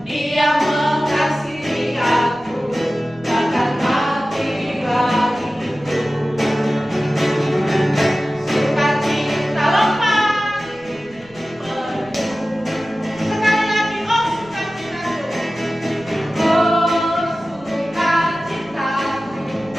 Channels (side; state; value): right; noise; rumble, 24 dB below the sound